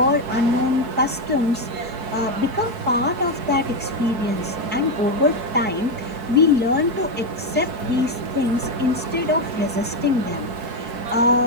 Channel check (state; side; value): late; left; 4.6 ms